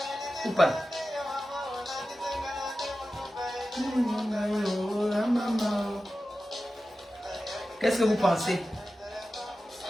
Ou pas? Qu'est-ce que vous pensez?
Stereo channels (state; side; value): normal; both; correlation 0.94